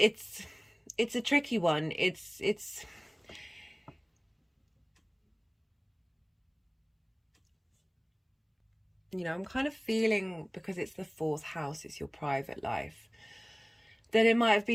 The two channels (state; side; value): identical; both; correlation 1.00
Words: a tricky one. It's you know, I'm kind of feeling, because it's the 4th house, it's your private life, that it might have